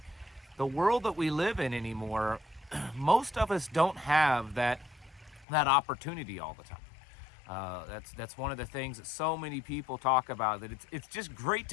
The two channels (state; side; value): drops out; right; at 5.5 s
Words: the world that we live in anymore, most of us don't have that opportunity all the time. That's one of the things that so many people talk about, that it's just great